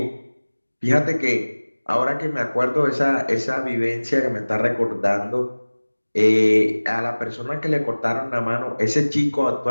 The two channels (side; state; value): both; inverted; correlation -1.00